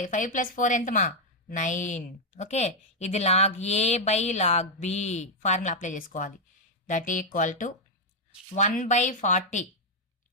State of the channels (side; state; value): both; normal; correlation -0.02